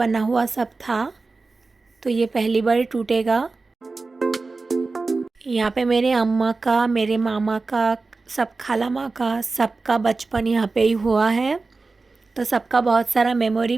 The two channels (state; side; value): quieter; left; 3.8 dB